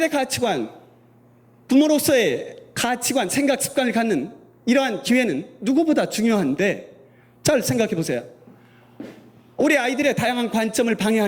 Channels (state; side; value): identical; both; correlation 1.00